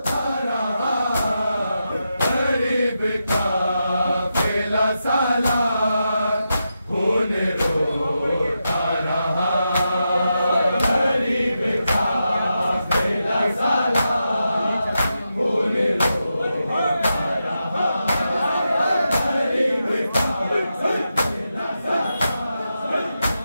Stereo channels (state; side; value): inverted; both; correlation -0.87